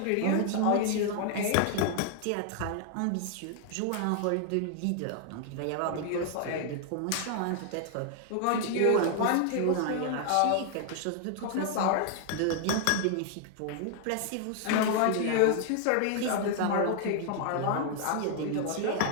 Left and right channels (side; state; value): both; different; correlation 0.00